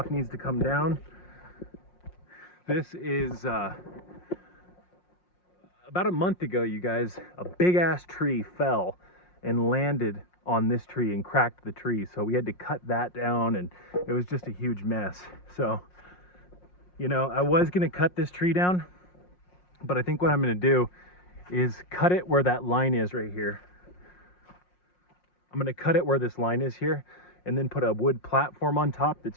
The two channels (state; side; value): late; right; 5.6 ms